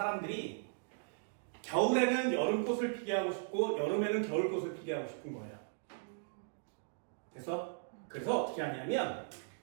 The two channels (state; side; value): silent; left; digital silence